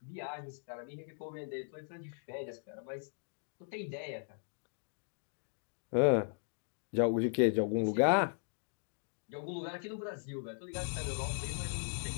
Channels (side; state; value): right; silent; digital silence